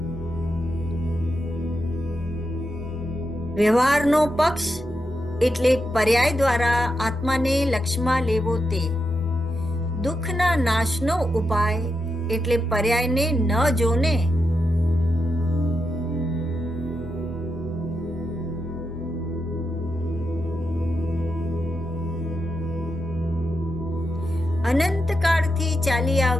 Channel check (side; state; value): both; normal; correlation 0.86